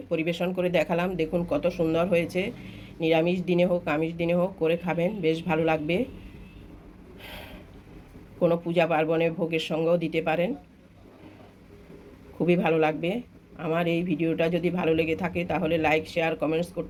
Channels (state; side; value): identical; both; correlation 1.00